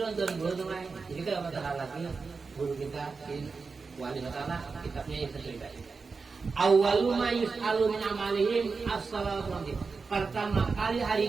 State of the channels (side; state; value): left; quieter; 4.6 dB